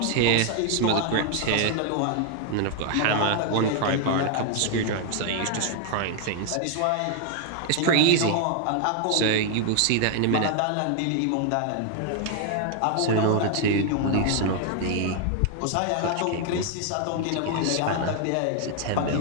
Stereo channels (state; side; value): different; both; correlation 0.00